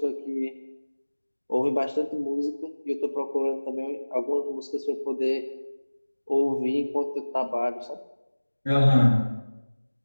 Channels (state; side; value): inverted; both; correlation -1.00